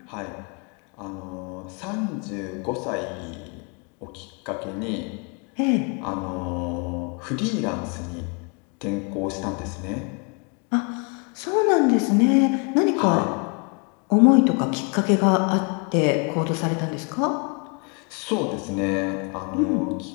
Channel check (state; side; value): quieter; right; 35.5 dB